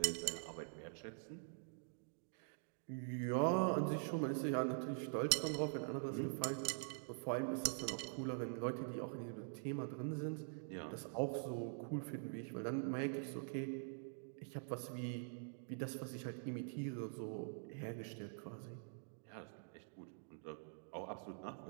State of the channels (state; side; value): silent; left; digital silence